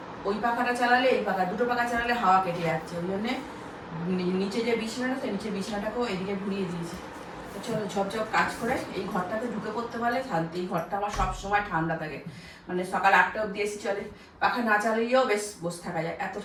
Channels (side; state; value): both; identical; correlation 1.00